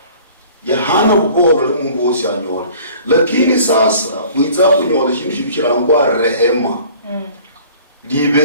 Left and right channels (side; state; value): both; inverted; correlation -0.49